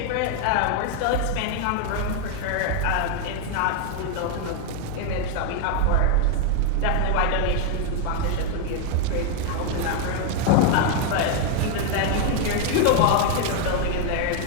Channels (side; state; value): both; different; correlation 0.00